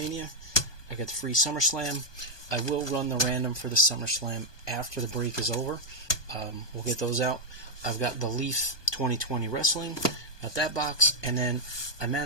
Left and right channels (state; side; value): late; right; 1.2 ms